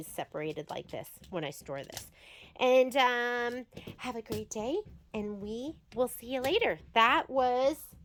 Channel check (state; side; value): identical; both; correlation 1.00